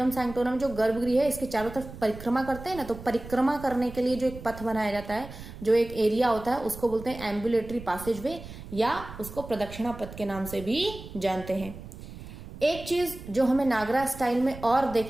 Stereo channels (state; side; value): noise; right; rumble, 13 dB below the sound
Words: सैंक्टोरम जो गर्भगृह है इसके चारों तरफ परिक्रमा करते हैं ना, तो परिक्रमा करने के लिए जो एक पथ बनाया जाता है, जो एक एरिया होता है, उसको बोलते हैं एम्बुलेटरी पैसेज वे, या उसको प्रदक्षिणा पथ के नाम से भी जानते हैं। एक चीज जो हमें नागरा स्टाइल में और